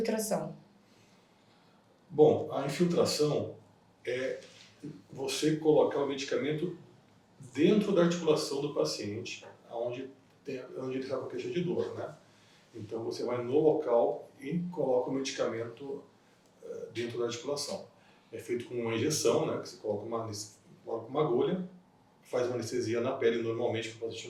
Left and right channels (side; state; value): both; identical; correlation 1.00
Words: Bom, a infiltração é você colocar o medicamento dentro da articulação do paciente, onde ele está com queixa de dor, né? Então você vai no local e coloca o medicamento dentro da articulação. É feito com uma injeção, né? Que você coloca uma agulha, faz uma anestesia na pele normalmente para o paciente